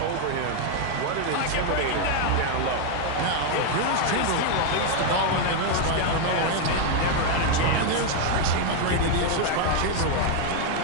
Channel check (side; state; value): both; different; correlation 0.01